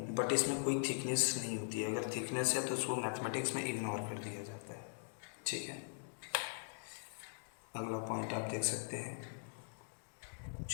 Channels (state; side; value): silent; right; digital silence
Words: इसमें कोई थिकनेस नहीं होती है। अगर थिकनेस है तो उसको मैथमेटिक्स में इग्नोर कर दिया जाता है। ठीक है, अगला पॉइंट आप देख सकते हैं।